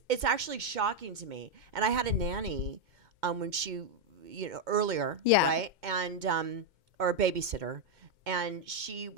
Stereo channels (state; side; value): late; left; 2.1 ms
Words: actually shocking to me. And I had a nanny when she, earlier, Yeah. right? And or a babysitter, and she